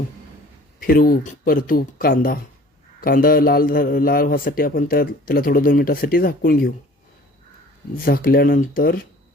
फिरवू परतू. कांदा लाल व्हासाठी आपण त्याला थोडं 2 मिनिटासाठी झाकून घेऊ. झाकल्यानंतर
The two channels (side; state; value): both; normal; correlation 0.49